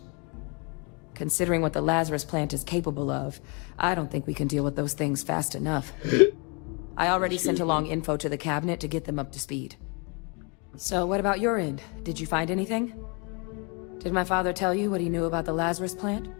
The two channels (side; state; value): right; quieter; 33.2 dB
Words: Considering what the Lazarus plant is capable of, I don't think we can deal with those things fast enough. I already sent along info to the cabinet to get them up to speed. So what about your end? Did you find anything? Did my father tell you what he knew about the Lazarus plant?